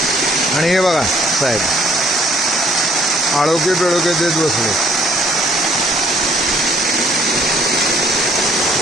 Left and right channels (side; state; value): both; normal; correlation 0.61